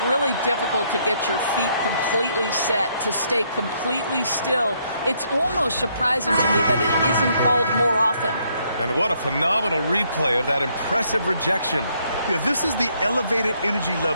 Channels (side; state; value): both; inverted; correlation -0.71